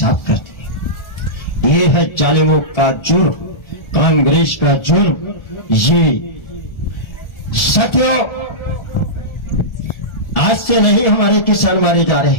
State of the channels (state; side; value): late; right; 1.4 ms